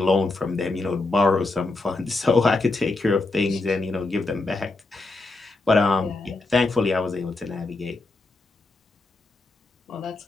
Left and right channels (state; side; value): quieter; right; 3.3 dB